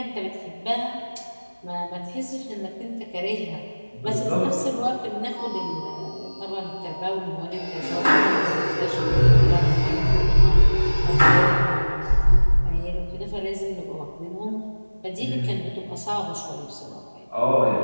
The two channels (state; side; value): inverted; both; correlation -1.00